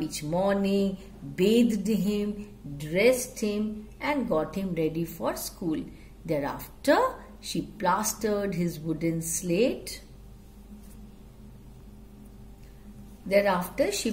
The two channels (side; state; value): both; identical; correlation 1.00